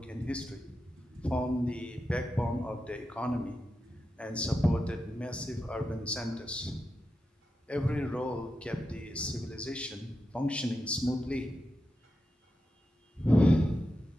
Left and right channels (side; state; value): both; normal; correlation 0.89